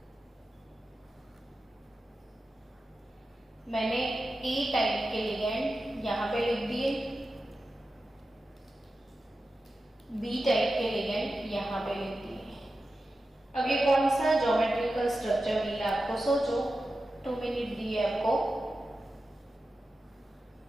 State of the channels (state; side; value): normal; both; correlation 0.92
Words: मैंने A टाइप के लिगेंड यहाँ पे लिख दिए, B टाइप के लिगेंड यहाँ पे लिख दिए। अब ये कौन सा ज्योमेट्रिकल स्ट्रक्चर मिला आपको, सोचो, 2 मिनट दिए आपको।